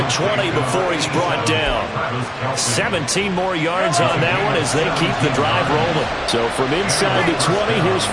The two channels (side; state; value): both; identical; correlation 1.00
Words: 20 before he's brought down. 17 more yards on that one as they keep the drive rolling. So from inside the 20, here's